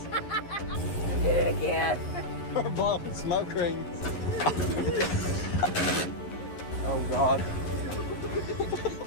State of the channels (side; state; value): right; late; 11 ms